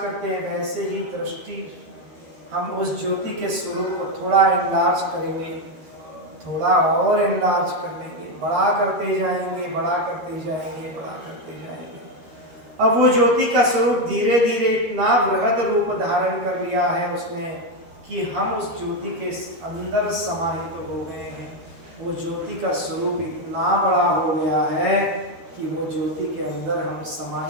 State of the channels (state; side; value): late; left; 13 ms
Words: करते हैं वैसे ही दृष्टि हम उस ज्योति के स्वरूप को थोड़ा एनलार्ज करेंगे, थोड़ा और एनलार्ज कर लेंगे, बड़ा करते जाएंगे, बड़ा करते जाएंगे, बड़ा करते जाएंगे। अब वो ज्योति का स्वरूप धीरे धीरे इतना बृहद रूप धारण कर लिया है उसने कि हम उस ज्योति के अंदर समाहित हो गए हैं। वो ज्योति का स्वरूप इतना बड़ा हो गया है कि वो ज्योति के अंदर हम